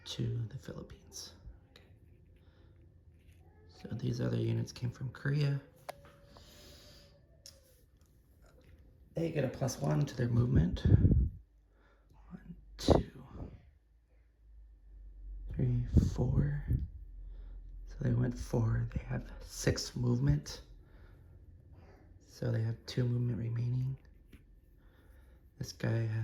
to the Philippines. Okay. So these other units came from Korea. They get a +1 to their movement. 1, 2, 3, 4. So they went 4. They have 6 movement. So they have 2 movement remaining. This guy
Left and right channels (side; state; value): both; identical; correlation 1.00